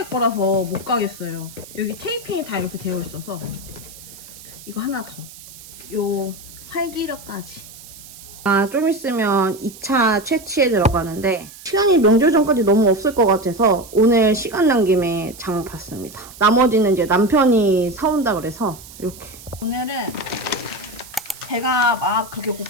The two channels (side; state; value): right; noise; hiss, 18 dB below the sound